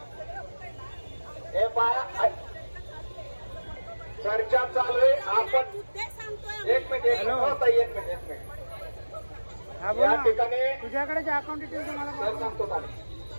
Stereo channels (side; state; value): both; inverted; correlation -1.00